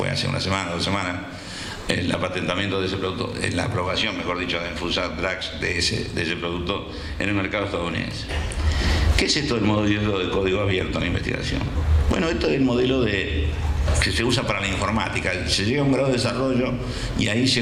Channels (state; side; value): identical; both; correlation 1.00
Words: hace una semana, 2 semanas, el patentamiento de ese producto, la aprobación, mejor dicho, de Food Drugs de ese producto en el mercado estadounidense. ¿Qué es esto del modelo de código abierto en la investigación? Bueno, esto es el modelo que se usa para la informática. Se llega a un grado de desarrollo y ahí